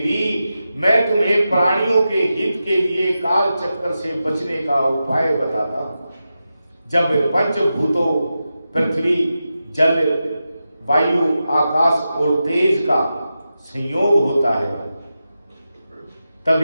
मैं तुम्हें प्राणियों के हित के लिए काल चक्कर से बचने का उपाय बताता हूं। जब पंचभूतों पृथ्वी, जल, वायु, आकाश और तेज का संयोग होता है,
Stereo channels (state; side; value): inverted; both; correlation -0.91